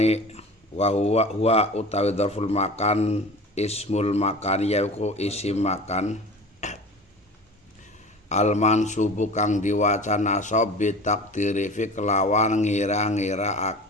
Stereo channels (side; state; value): both; normal; correlation 0.38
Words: wa huwa utawi dzarful makan ismul makan yaiku isim makan al mansubu kang diwaca nasab bi takdiri fi kelawan